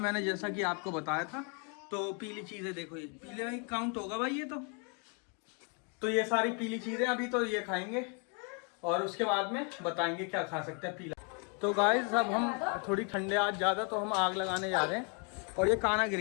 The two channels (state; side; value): quieter; right; 37.3 dB